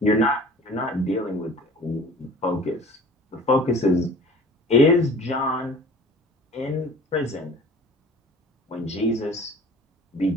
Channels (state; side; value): normal; both; correlation 0.45